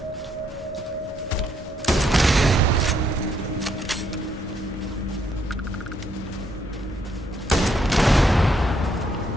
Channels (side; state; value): both; normal; correlation 0.73